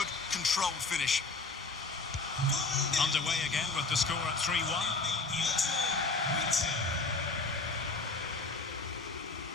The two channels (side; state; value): right; quieter; 3.7 dB